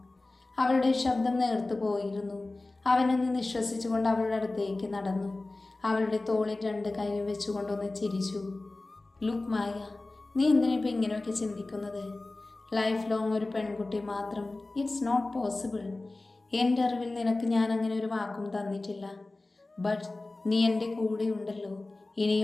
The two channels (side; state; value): right; quieter; 3.1 dB